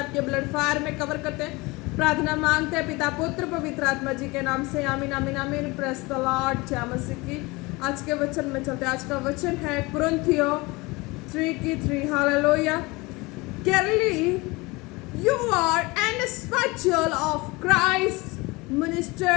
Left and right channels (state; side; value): quieter; right; 23.9 dB